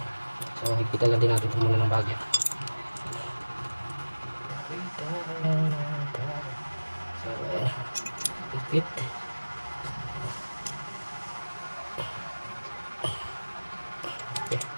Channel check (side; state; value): both; inverted; correlation -1.00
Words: So higpitan lang din natin ito muna ng bagya. So ayan, higpit. Okay.